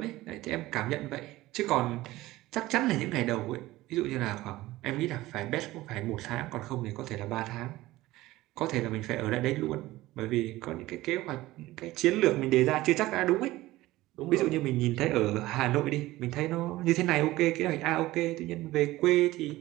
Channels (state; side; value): quieter; left; 17.5 dB